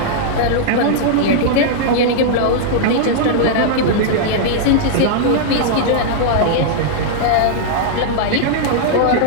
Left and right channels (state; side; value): different; both; correlation -0.01